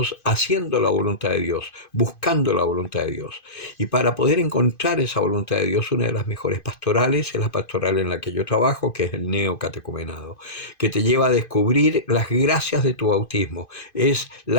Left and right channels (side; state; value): right; late; 2.5 ms